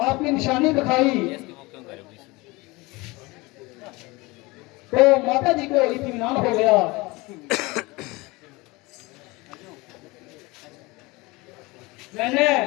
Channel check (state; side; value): quieter; right; 23.3 dB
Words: आपकी निशानी दिखाई तो माता जी को इत्मीनान हो गया। मैंने